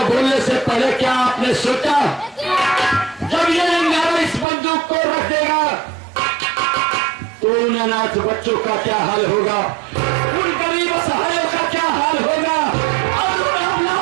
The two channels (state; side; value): drops out; left; at 4.5 s